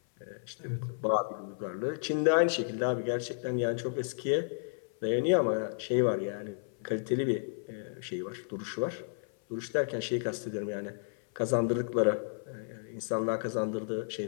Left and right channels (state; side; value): silent; right; 56 dB below the other